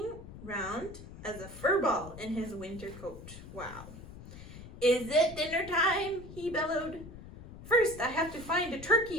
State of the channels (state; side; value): noise; left; rumble, 15 dB below the sound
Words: round as a fur ball in his winter coat. Wow. Is it dinner time? He bellowed. First, I have to find a